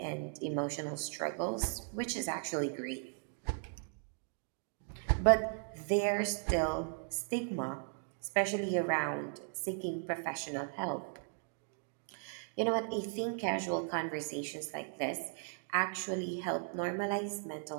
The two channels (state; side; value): silent; left; 53 dB below the other